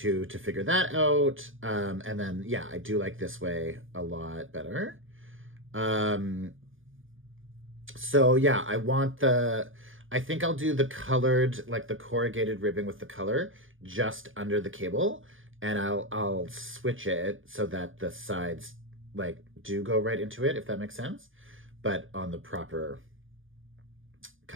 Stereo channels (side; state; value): left; late; 0.58 ms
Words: to figure that out. And then, yeah, I do like this way a lot better. So yeah, I think I'll do the colored, like the corrugated ribbing with the color just under the cable. And I'll switch it so that the sides like do go right into it, if that makes sense. But on the proper,